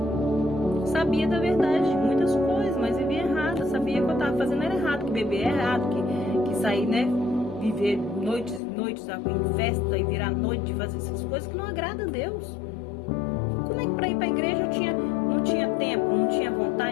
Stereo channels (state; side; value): drops out; right; at 8.6 s